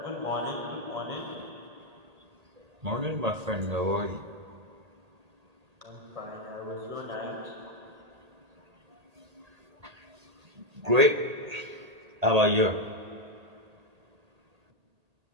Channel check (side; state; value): left; late; 1.8 ms